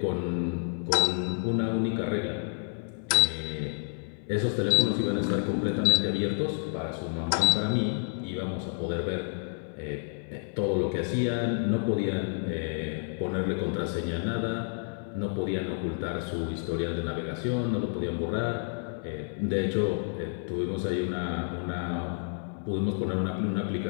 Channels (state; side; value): silent; right; 58 dB below the other